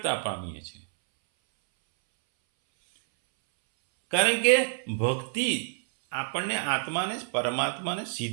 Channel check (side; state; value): left; silent; 60 dB below the other